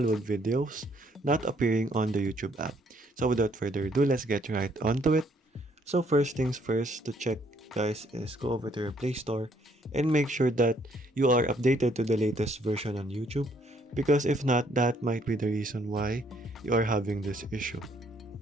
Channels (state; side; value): normal; both; correlation 0.67